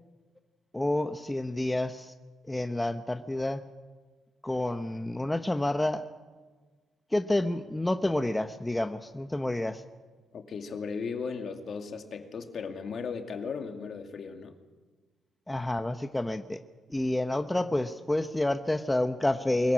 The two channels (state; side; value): normal; both; correlation 0.97